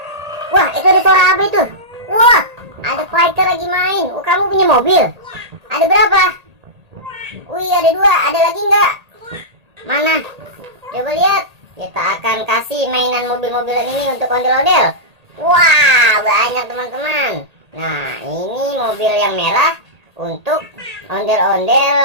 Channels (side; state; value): left; late; 1.8 ms